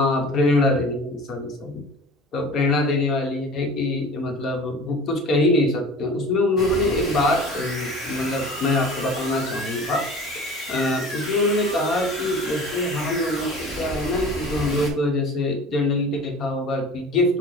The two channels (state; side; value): normal; both; correlation 0.41